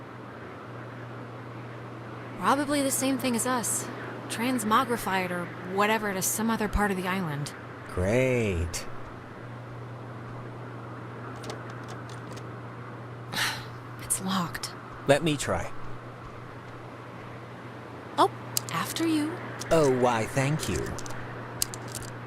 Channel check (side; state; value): both; identical; correlation 1.00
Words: Probably the same thing as us. Transmogrified or whatever to some other part of the island. Great. It's locked. Let me try. Oh, after you. Oh, why, thank you.